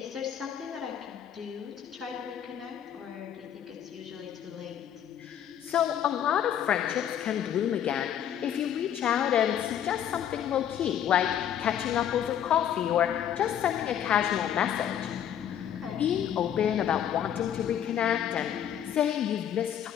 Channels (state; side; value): quieter; right; 9.8 dB